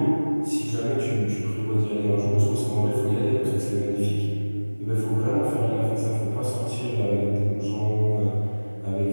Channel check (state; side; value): inverted; both; correlation -1.00